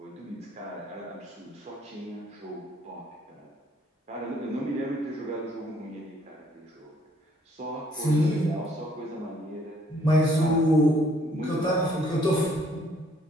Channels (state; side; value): normal; both; correlation 0.64